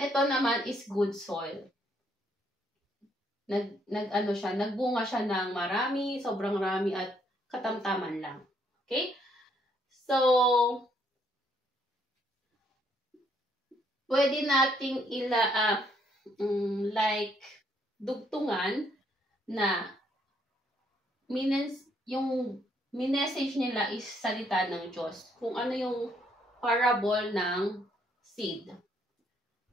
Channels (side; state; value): both; normal; correlation 0.70